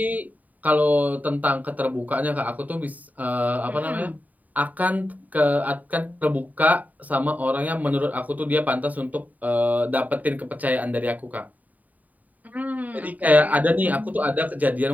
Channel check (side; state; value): left; late; 0.076 ms